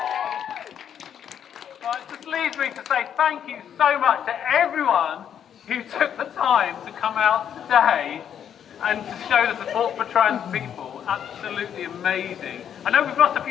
Well, it just leaves me to say thank you so much to everyone who took the time to come out today and to show the support for trans people. Absolutely amazing. I know we've lost a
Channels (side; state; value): right; quieter; 9.0 dB